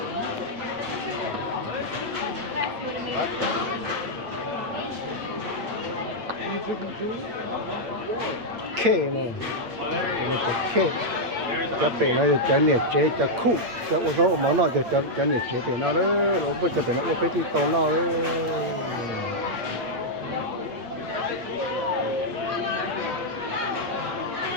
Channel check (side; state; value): left; late; 8.5 ms